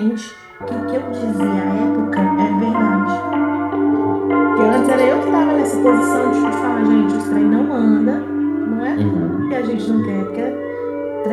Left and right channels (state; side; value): identical; both; correlation 1.00